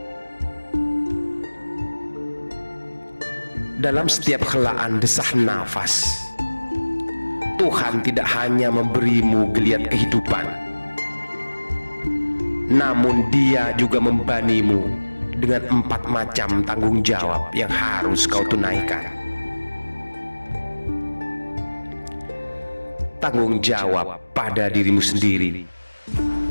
Dalam setiap helaan desah nafas, Tuhan tidak hanya memberimu geliat kehidupan, namun Dia juga membanimu dengan 4 macam tanggung jawab yang harus kau tunaikan. Tanggung jawab pada dirimu sendiri,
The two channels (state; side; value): inverted; both; correlation -1.00